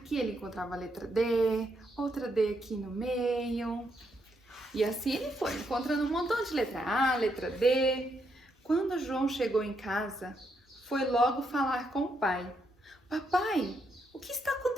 ele encontrava a letra D, outra D aqui no meio. E assim ele foi, encontrando um montão de letra A, letra D. Quando João chegou em casa, foi logo falar com o pai. Papai, o que está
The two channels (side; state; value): both; normal; correlation 0.78